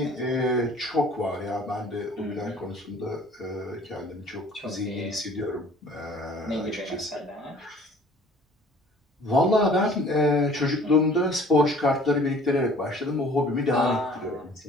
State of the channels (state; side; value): normal; both; correlation 0.51